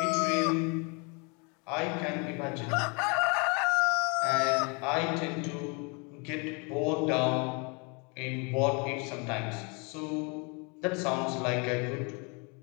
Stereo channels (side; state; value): right; quieter; 32.4 dB